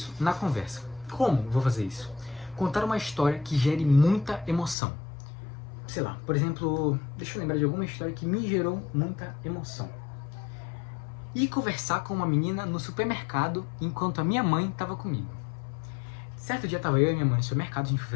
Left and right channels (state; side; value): drops out; right; at 4.8 s